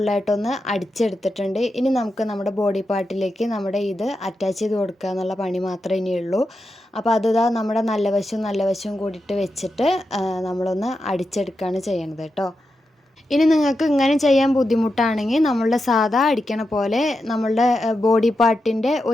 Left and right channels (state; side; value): normal; both; correlation 0.88